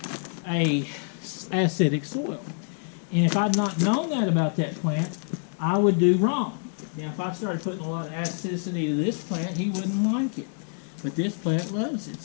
acidic soil. And if I'd not known that about that plant, I would do wrong. Now, if I started putting a lot of acidity to this plant, he wouldn't like it. But this plant loves it.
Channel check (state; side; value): silent; right; 60 dB below the other